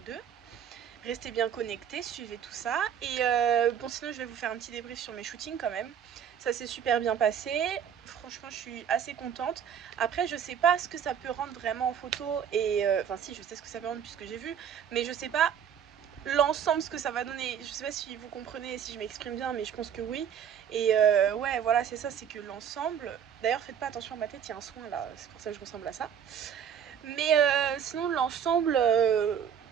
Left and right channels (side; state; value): left; quieter; 8.5 dB